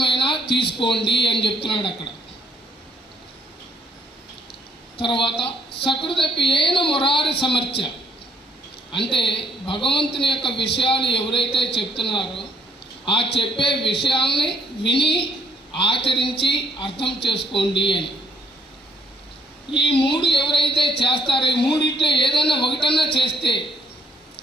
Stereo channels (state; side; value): normal; both; correlation 0.65